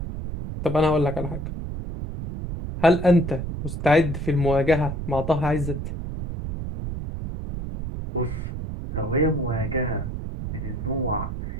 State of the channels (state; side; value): noise; right; rumble, 6 dB below the sound